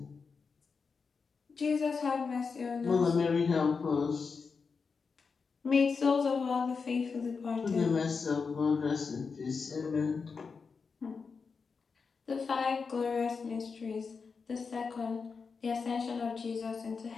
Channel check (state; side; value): quieter; right; 5.1 dB